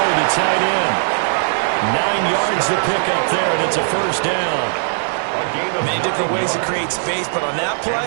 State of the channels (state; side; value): silent; left; 60 dB below the other